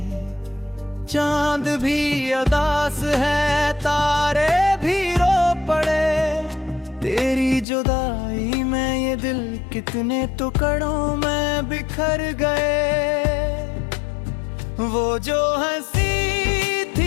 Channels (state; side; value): drops out; right; at 7.7 s